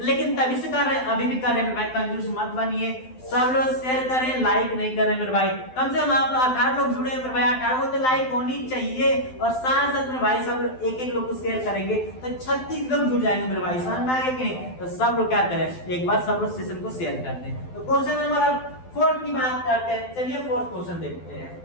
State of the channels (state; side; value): late; right; 12 ms